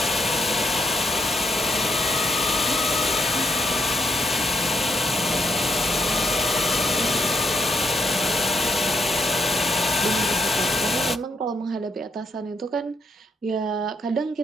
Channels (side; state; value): both; normal; correlation 0.77